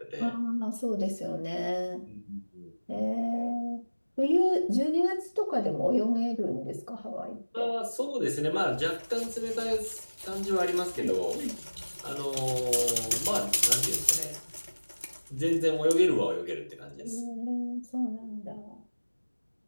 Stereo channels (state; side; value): inverted; both; correlation -1.00